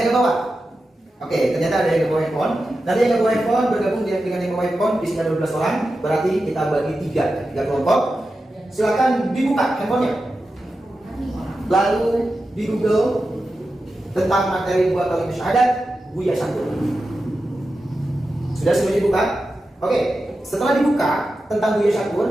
ke bawah? Oke, ternyata ada yang bawa handphone. Nanti yang bawa handphone bergabung dengan yang bawa handphone, di sini ada 12 orang. Berarti kita bagi tiga kelompok. Silakan dibuka handphonenya. Lalu di Google tentang materi dua kalimat syahadat, Buya Santun. Sudah semuanya dibuka? Oke, setelah dibuka tentang Buya Santun,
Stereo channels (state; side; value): normal; both; correlation 0.91